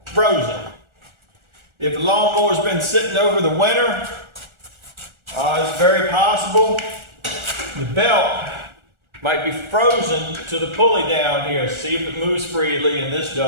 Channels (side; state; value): left; late; 1.4 ms